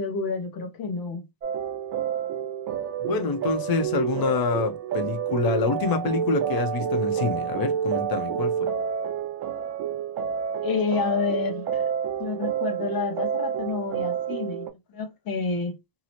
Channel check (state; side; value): late; right; 1.0 ms